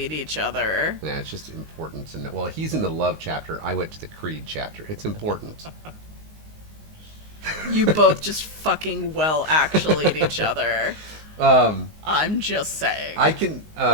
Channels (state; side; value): late; left; 19 ms